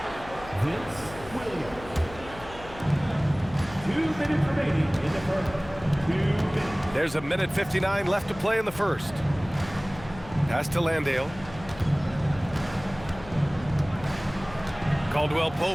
Vince Williams. 2 minutes remaining in the first. 2 minutes. There's 1:59 left to play in the first. Pass to Landale. Caldwell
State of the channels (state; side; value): noise; left; hum, 16 dB below the sound